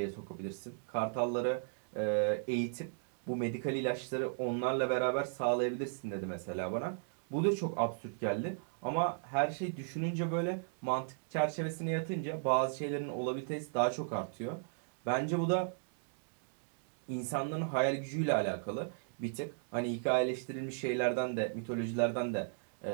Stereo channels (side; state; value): left; silent; digital silence